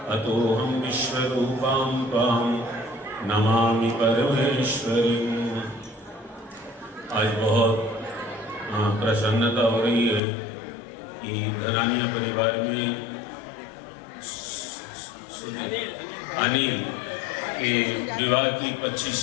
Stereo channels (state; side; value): drops out; right; at 10.2 s